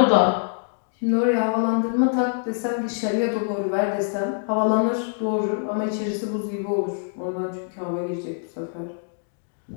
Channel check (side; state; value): right; silent; digital silence